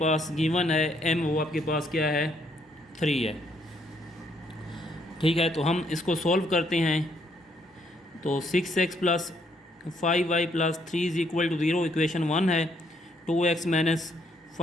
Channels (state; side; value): normal; both; correlation 0.70